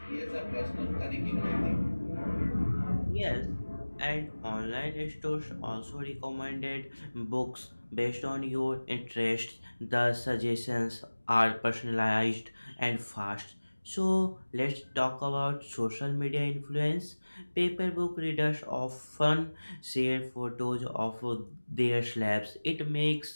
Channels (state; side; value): inverted; both; correlation -1.00